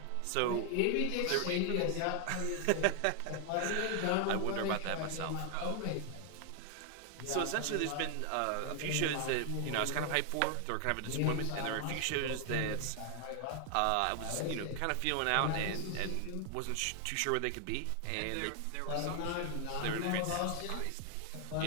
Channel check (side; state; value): both; different; correlation 0.00